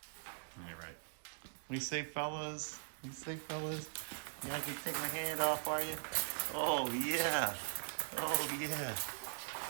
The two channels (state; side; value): silent; left; digital silence